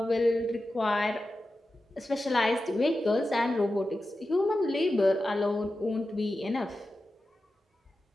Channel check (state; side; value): normal; both; correlation 0.92